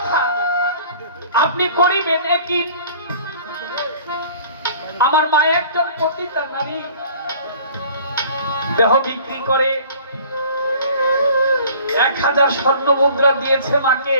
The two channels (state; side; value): inverted; both; correlation -0.49